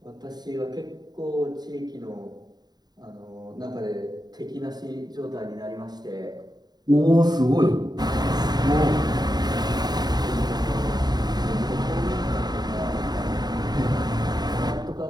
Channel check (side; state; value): left; late; 0.20 ms